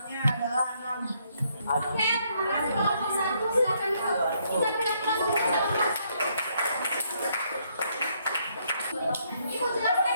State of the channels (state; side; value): inverted; both; correlation -0.72